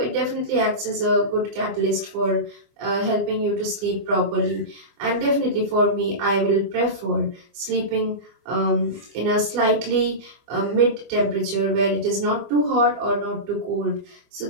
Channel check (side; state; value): left; late; 24 ms